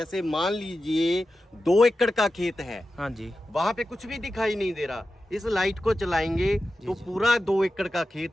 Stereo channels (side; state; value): both; normal; correlation 0.92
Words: मान लीजिए 2 एकड़ का खेत है, हाँ जी। वहां पे कुछ भी दिखाई नहीं दे रहा। इस लाइट को चलाएंगे तो जी। पूरा 2 एकड़ का